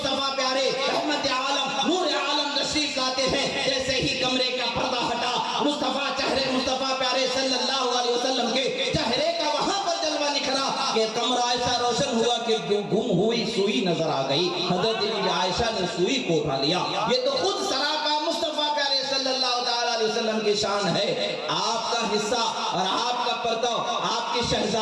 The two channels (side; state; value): both; identical; correlation 1.00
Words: پیارے رحمت عالم نور عالم تشریف لاتے ہیں۔ جیسے ہی کمرے کا پردہ ہٹا، مصطفیٰ چہرے مصطفیٰ پیارے صلی اللہ علیہ وسلم کے چہرے کا وہاں پر جلوہ نکھرا کہ کمرہ ایسا روشن ہوا کہ گم ہوئی سوئی نظر آ گئی. حضرت بی عائشہ نے سوئی کو اٹھا لیا. یہ تو خود سراپا مصطفیٰ پیارے صلی اللہ تعالیٰ علیہ وسلم کی شان ہے. آپ کا حصہ اور آپ کا پرتو، آپ کی